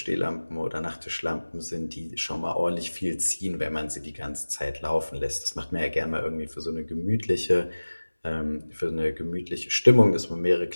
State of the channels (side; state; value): both; inverted; correlation -1.00